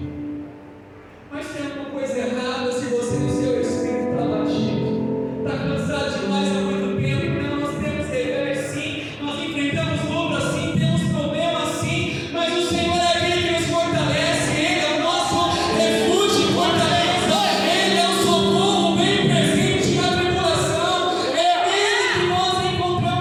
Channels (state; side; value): identical; both; correlation 1.00